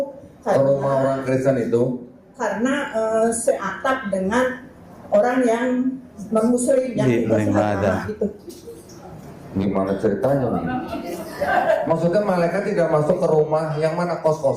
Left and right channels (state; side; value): identical; both; correlation 1.00